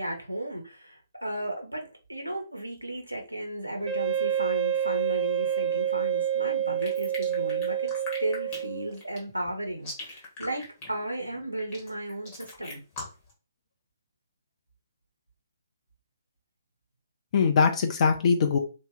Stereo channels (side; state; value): both; inverted; correlation -0.55